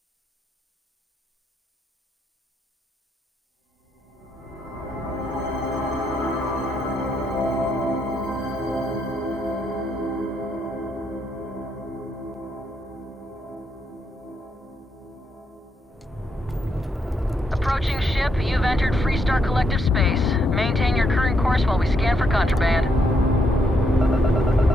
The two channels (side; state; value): both; normal; correlation 0.77